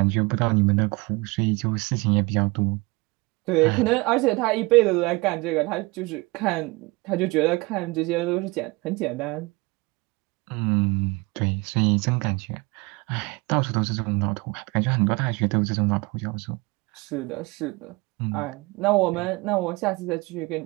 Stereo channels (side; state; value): left; quieter; 24.8 dB